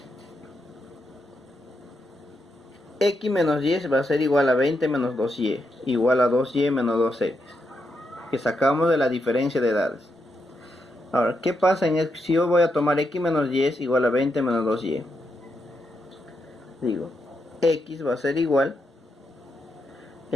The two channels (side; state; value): both; normal; correlation 0.82